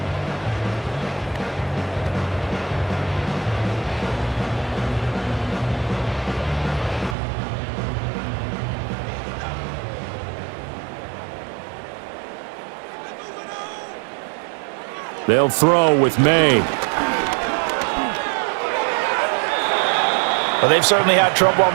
They'll throw with May. Well, they've certainly had trouble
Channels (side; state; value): left; drops out; at 7.2 s